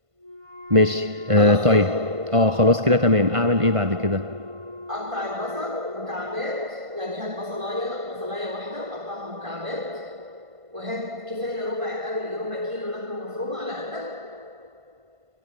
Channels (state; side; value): late; left; 1.5 ms